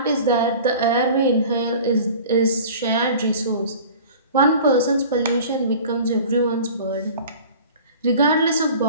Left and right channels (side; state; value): both; inverted; correlation -0.42